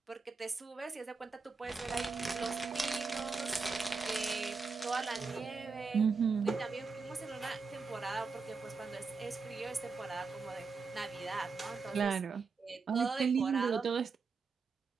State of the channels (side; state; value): left; quieter; 4.7 dB